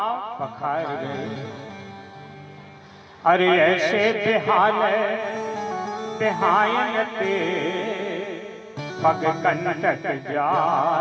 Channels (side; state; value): both; identical; correlation 1.00